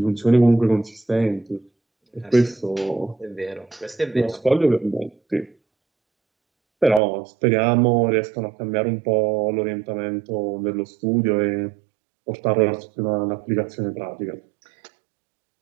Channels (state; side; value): drops out; left; at 7.0 s